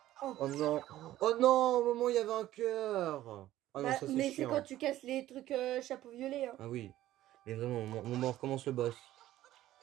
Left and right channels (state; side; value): quieter; left; 14.3 dB